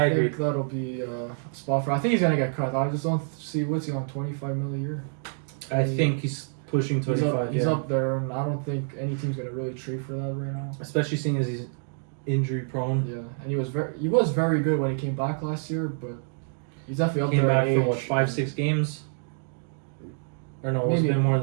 agree. think that'll be a spot for. I think he's going to get cut. I just don't see what's he on $25 million a year. I think he's pushing 25. He's up there, and I don't think any team's going to really trade for that right now. Especially seeing as he's injury prone. Yeah, and he was very good when he came back last year, but he's definitely up Came there. back for what, 5-6 games? Or no, it's been more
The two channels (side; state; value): left; silent; digital silence